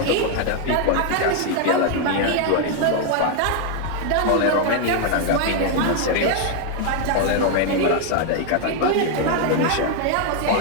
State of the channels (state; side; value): different; both; correlation 0.01